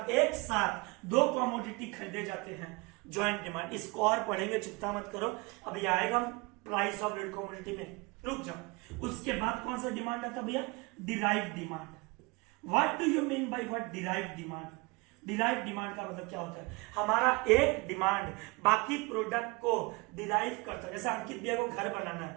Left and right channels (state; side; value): quieter; left; 25.8 dB